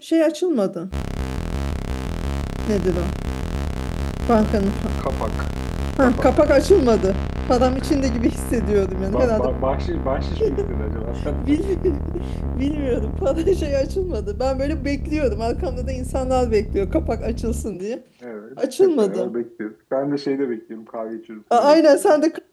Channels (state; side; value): identical; both; correlation 1.00